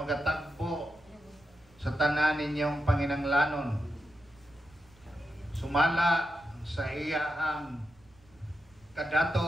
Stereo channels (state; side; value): noise; right; rumble, 28 dB below the sound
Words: sa tanan ninyong panginanglanon, sumala sa iyahang